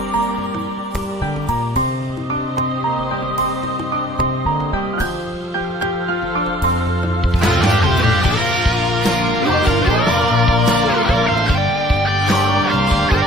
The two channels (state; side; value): normal; both; correlation 0.55